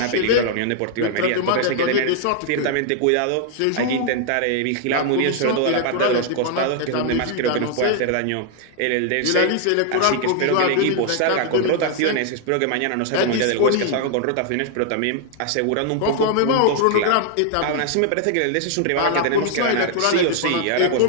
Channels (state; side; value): different; both; correlation 0.00